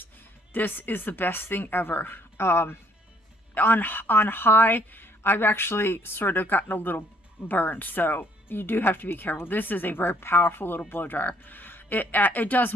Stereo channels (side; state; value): both; normal; correlation 0.64